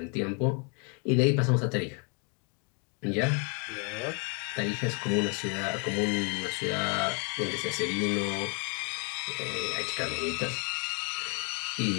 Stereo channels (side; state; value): right; quieter; 36.6 dB